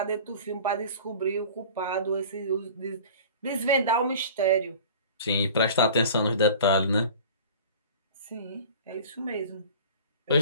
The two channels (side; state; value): both; inverted; correlation -0.41